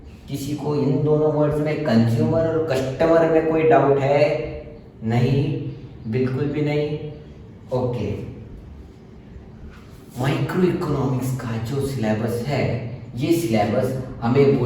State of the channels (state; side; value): identical; both; correlation 1.00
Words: किसी को इन दोनों वर्ड्स में कंज्यूमर और कस्टमर में कोई डाउट है? नहीं, बिल्कुल भी नहीं। ओके, माइक्रो इकोनॉमिक्स का जो सिलेबस है, ये सिलेबस हमें